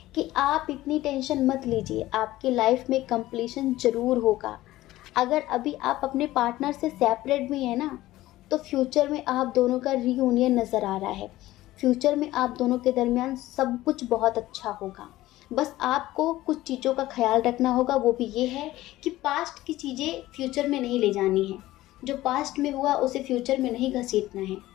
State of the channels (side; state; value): right; quieter; 16.3 dB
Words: कि आप इतनी टेंशन मत लीजिए, आपकी लाइफ में कंप्लीशन ज़रूर होगा। अगर अभी आप अपने पार्टनर से सेपरेट भी हैं ना, तो फ्यूचर में आप दोनों का रीयूनियन नज़र आ रहा है। फ्यूचर में आप दोनों के दरमियान सब कुछ बहुत अच्छा होगा। बस आपको कुछ चीज़ों का ख्याल रखना होगा, वो भी ये है कि पास्ट की चीज़ें फ्यूचर में नहीं ले जानी है। जो पास्ट में हुआ उसे फ्यूचर में नहीं घसीटना है